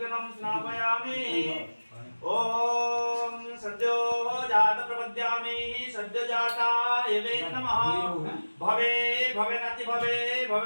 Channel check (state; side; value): inverted; both; correlation -1.00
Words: स्नापयामि। ओम सद्यो जात प्रपद्यामि सद्यो जाताय वे नमः भवे भवेनाति भवे